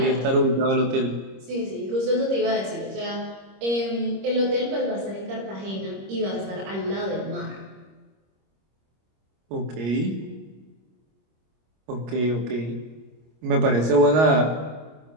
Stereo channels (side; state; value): left; late; 26 ms